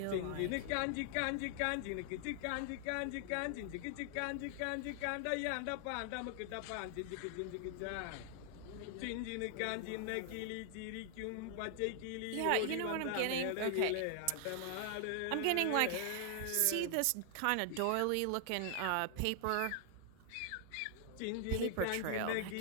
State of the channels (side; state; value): both; different; correlation 0.00